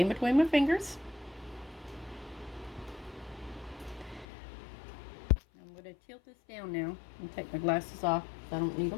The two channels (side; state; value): right; drops out; at 4.2 s